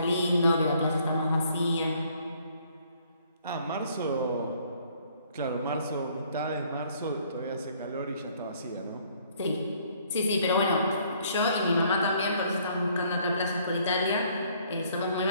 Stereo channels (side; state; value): both; inverted; correlation -0.63